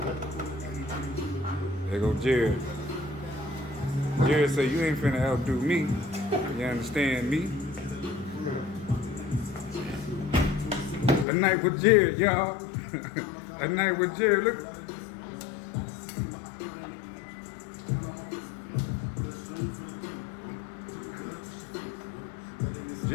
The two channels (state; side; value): drops out; right; at 11.2 s